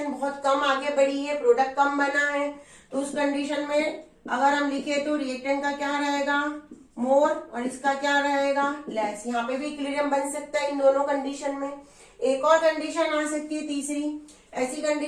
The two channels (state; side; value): identical; both; correlation 1.00